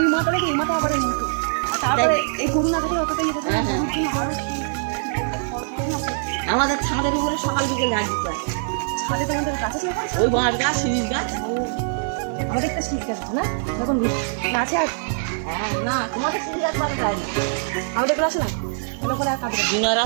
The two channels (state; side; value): silent; left; digital silence